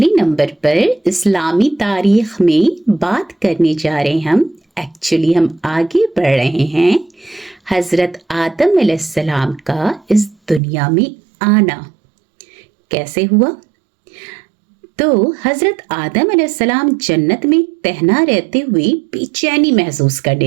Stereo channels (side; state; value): left; drops out; at 10.6 s